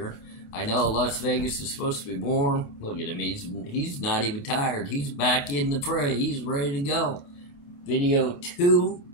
I know Las Vegas is supposed to be warm. Look at him, he's not even tired. He's back in the fray. He's ready to go. Video 2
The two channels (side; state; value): right; late; 29 ms